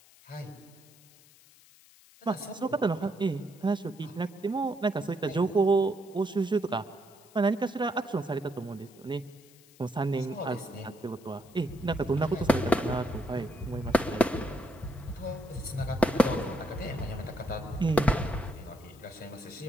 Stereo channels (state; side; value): noise; left; hiss, 25 dB below the sound